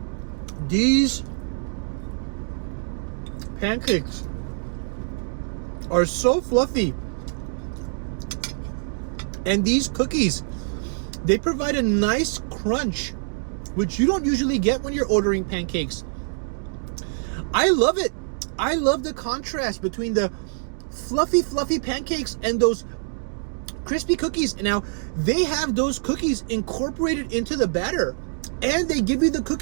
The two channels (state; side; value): silent; left; digital silence